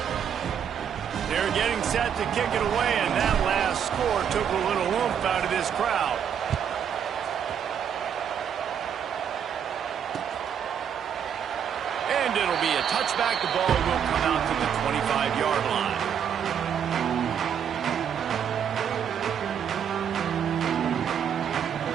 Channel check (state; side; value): quieter; left; 8.3 dB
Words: They're getting set to kick it away, and that last score took a little oomph out of this crowd. And it'll be a touchback. The ball will come out to the 25-yard line.